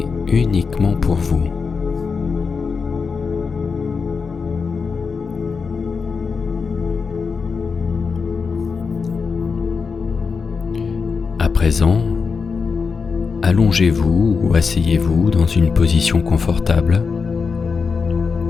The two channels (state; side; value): quieter; right; 5.2 dB